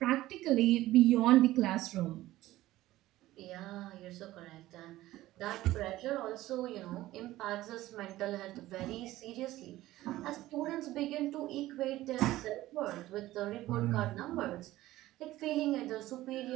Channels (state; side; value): quieter; left; 16.1 dB